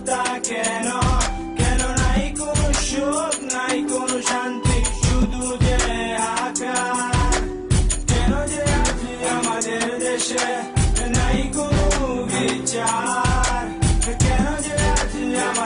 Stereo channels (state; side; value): identical; both; correlation 1.00